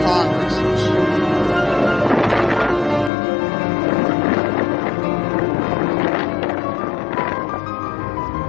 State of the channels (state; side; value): drops out; right; at 3.1 s